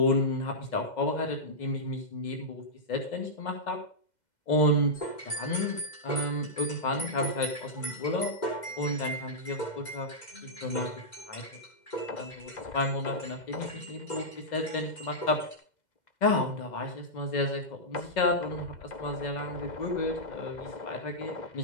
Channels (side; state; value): right; late; 2.0 ms